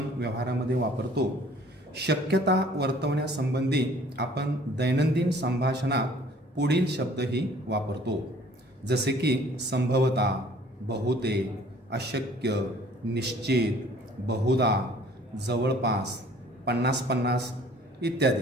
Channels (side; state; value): both; normal; correlation 0.54